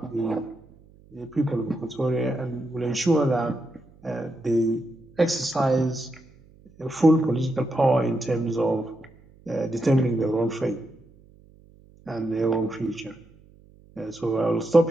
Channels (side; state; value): right; noise; hum, 27 dB below the sound